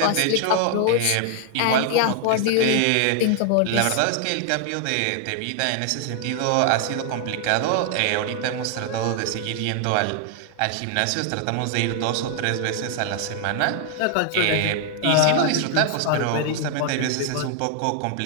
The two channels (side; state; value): both; different; correlation 0.00